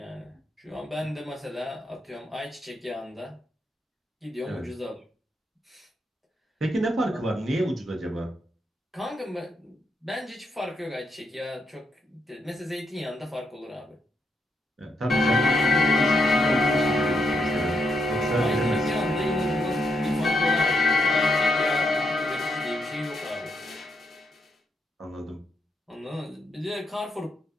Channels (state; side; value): normal; both; correlation 0.79